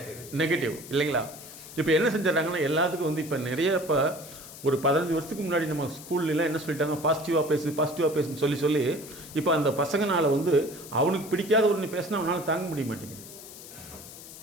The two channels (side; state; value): left; noise; hiss, 15 dB below the sound